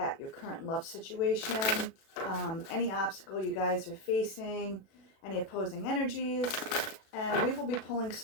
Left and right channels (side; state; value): right; late; 36 ms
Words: your current love situation, any obstacle you guys are facing, any opposing energies, and we will be pulling